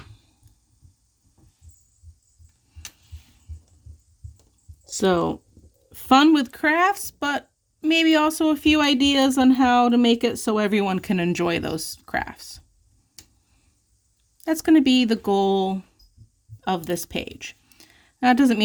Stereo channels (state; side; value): identical; both; correlation 1.00